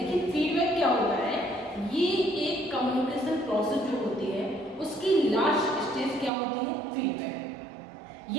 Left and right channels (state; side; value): drops out; left; at 6.3 s